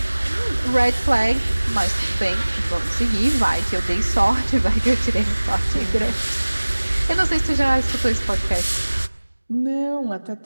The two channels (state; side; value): inverted; both; correlation -1.00